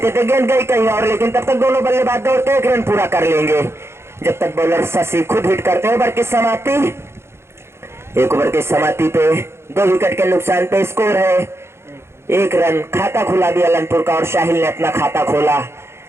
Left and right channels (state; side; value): late; left; 0.12 ms